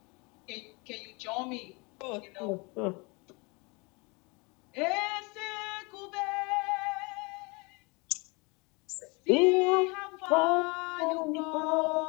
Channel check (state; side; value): quieter; right; 28.4 dB